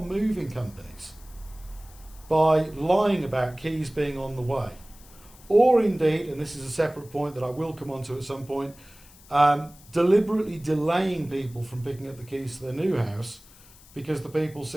moving companies by lying about keys being on the way. Or indeed, and this is a separate point that I will come on to at some point, deliberately delaying people from picking up the keys to their new house because the people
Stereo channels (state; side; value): noise; left; hiss, 24 dB below the sound